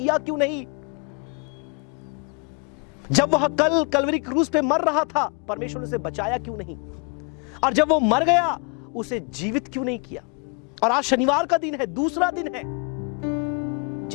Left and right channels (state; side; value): quieter; right; 34.6 dB